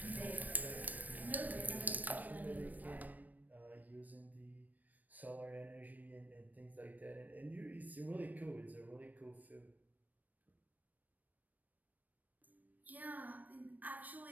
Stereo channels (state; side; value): late; left; 0.083 ms